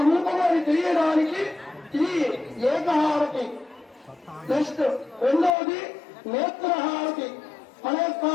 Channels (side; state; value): right; drops out; at 5.5 s